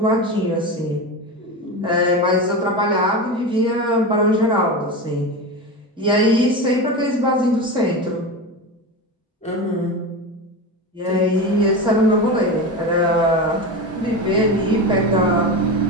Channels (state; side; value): normal; both; correlation 0.22